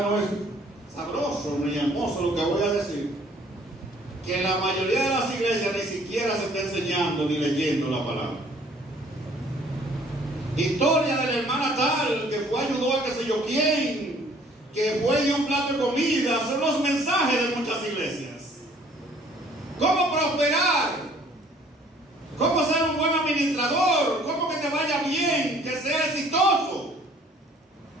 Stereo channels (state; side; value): normal; both; correlation 0.58